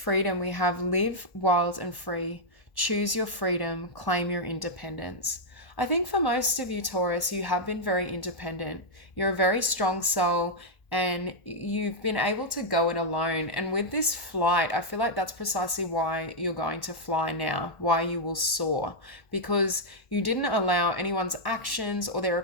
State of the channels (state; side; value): late; right; 1.1 ms